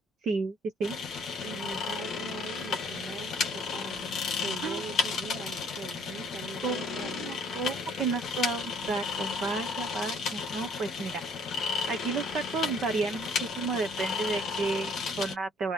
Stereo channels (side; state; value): both; normal; correlation 0.59